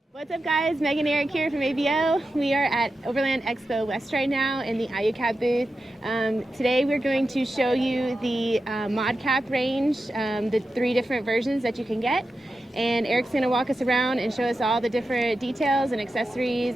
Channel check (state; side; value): normal; both; correlation 0.91